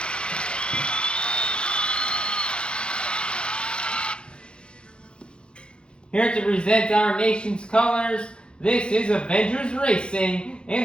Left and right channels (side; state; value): right; late; 0.054 ms